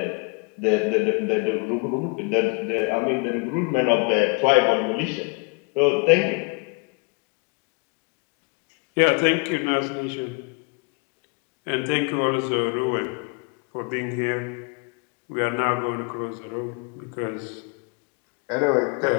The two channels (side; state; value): right; quieter; 32.8 dB